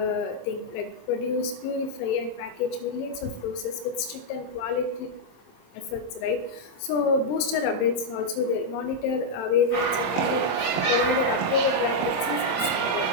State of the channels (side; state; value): right; late; 27 ms